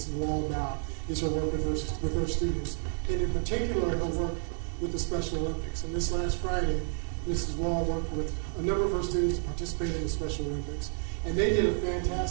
Wall about is her work with her students, and in particular, her work with the Special Olympics. And this last Friday, Mrs. Wall worked with a number of her students to participate in the Special Olympics. And they did a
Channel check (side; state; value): left; silent; 58 dB below the other